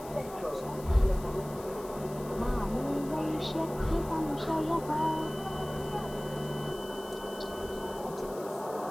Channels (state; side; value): noise; left; hiss, 18 dB below the sound